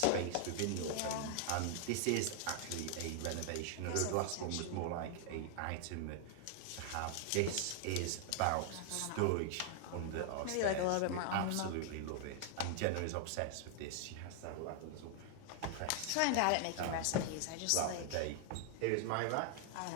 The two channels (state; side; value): different; both; correlation 0.00